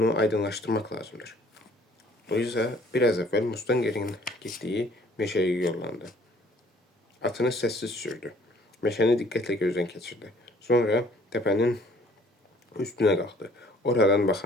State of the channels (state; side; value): normal; both; correlation 0.58